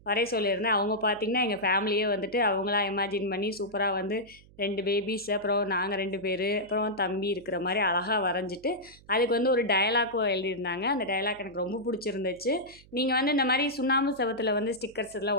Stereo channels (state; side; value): noise; right; hum, 25 dB below the sound